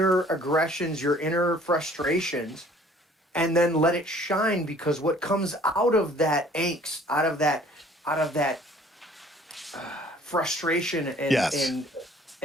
aggressions, your inner frustrations, and then let it shine, because what comes out of that angst, out of that frustration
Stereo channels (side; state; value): both; normal; correlation 0.54